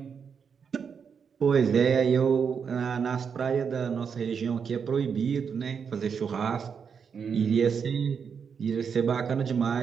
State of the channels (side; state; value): left; quieter; 6.5 dB